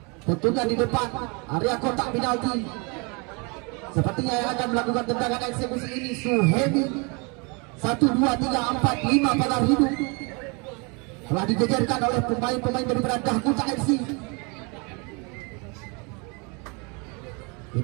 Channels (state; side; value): quieter; left; 31.2 dB